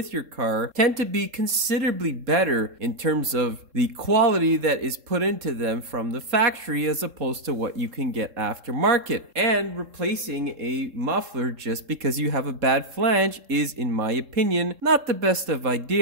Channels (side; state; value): left; late; 3.7 ms